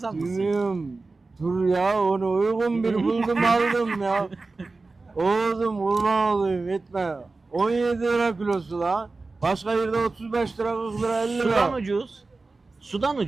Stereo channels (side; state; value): left; quieter; 3.6 dB